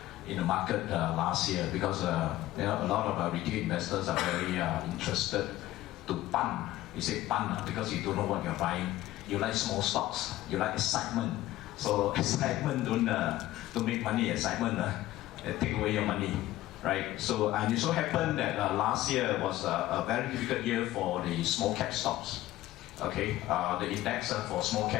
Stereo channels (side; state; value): right; quieter; 15.6 dB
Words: market last year because a lot of retail investors are very interested to pun. You say pun because you don't know what you're buying. You like small stocks. You like excitement. So excitement don't make money. Excitement take away your money. Right, so and it so happened that last year was a very difficult year for the small cap stocks. Okay, the index for small